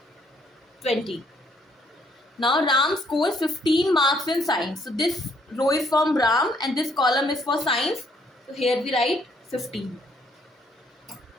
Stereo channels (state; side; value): normal; both; correlation 0.68